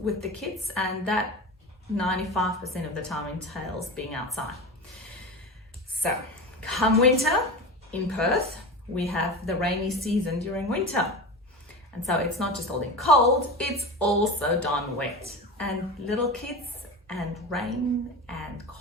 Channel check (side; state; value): both; normal; correlation 0.27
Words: the kids, and that 95% of the time entails being outside. So come winter in Perth, we have the rainy season during winter. And so it's not just all in cold, it's also darn wet. And little kids and rain and